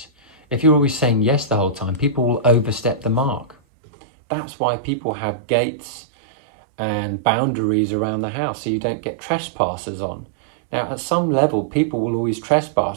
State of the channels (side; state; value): left; drops out; at 3.6 s